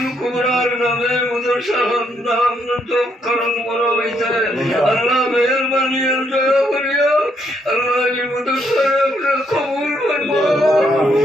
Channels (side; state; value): both; normal; correlation 0.74